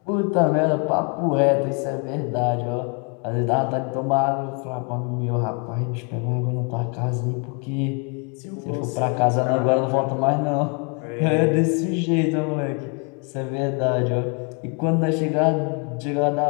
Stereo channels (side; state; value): right; quieter; 34.2 dB